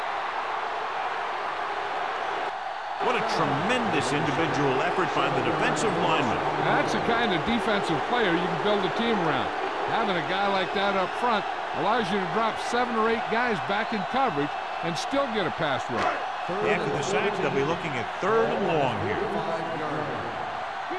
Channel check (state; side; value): identical; both; correlation 1.00